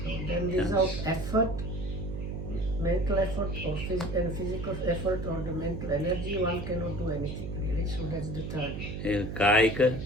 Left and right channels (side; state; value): right; noise; hum, 6 dB below the sound